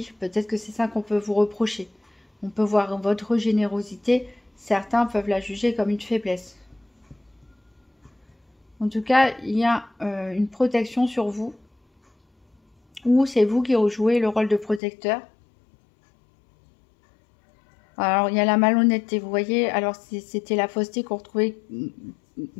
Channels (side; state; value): right; drops out; at 14.8 s